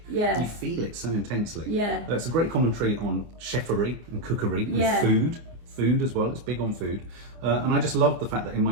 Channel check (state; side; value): late; left; 24 ms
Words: Yeah. You feel it so intensely. Yeah. It's a great commentary on chefery and cookery and Yeah. food as well. It's big on food. And I just love the fact that in my